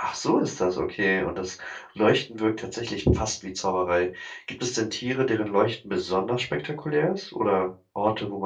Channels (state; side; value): identical; both; correlation 1.00